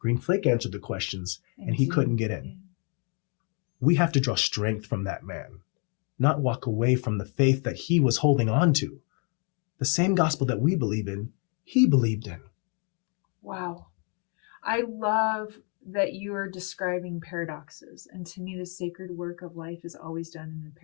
Flake answered the questions and he couldn't get in. We have to draw strength from that man, not walk away from the faith that he was holding on to. The same gospel that we believe in, he believed in. Wow. I love that you are describing paradoxes. And to me, the sacred work of life is always done in the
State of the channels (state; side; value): quieter; right; 37.5 dB